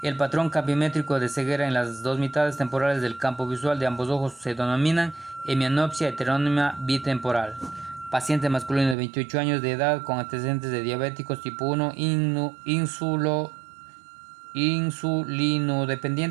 El patrón campimétrico de ceguera en las dos mitades temporales del campo visual de ambos ojos se denominan hemianopsia heterónima bitemporal. Paciente masculino de 28 años de edad con antecedentes de diabéticos tipo 1,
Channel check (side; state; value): left; drops out; at 9.0 s